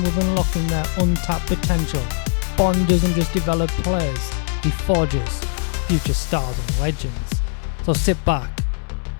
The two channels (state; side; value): silent; right; digital silence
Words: with unlocking their untapped potential, Bond doesn't just develop players, he forges future stars and legends. So sit back,